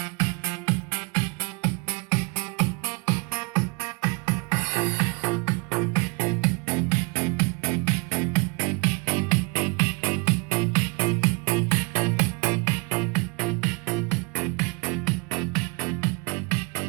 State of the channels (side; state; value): left; quieter; 29.7 dB